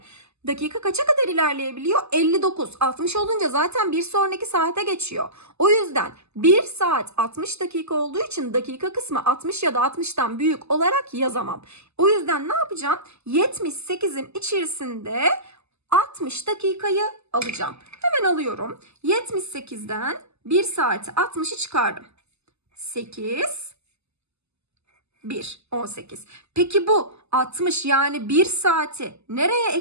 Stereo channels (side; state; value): left; late; 0.80 ms